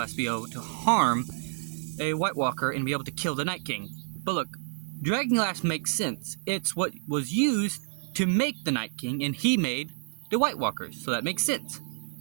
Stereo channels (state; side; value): silent; left; digital silence